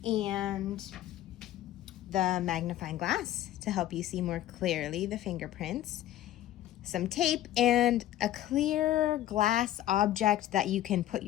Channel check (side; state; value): right; quieter; 13.3 dB